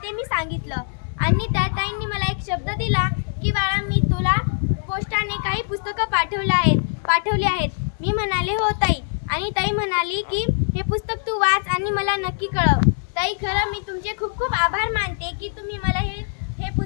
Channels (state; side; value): silent; right; digital silence